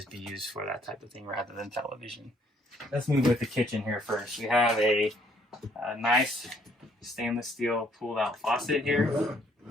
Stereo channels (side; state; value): both; normal; correlation 0.65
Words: be used for that type of thing rather than television. Let's move with the kitchen here first. We have a nice stainless steel pulled out faucet here.